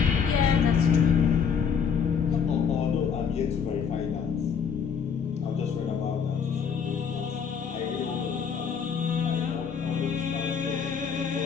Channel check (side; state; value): right; quieter; 6.8 dB